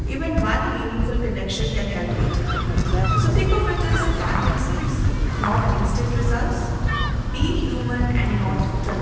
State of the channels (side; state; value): both; identical; correlation 1.00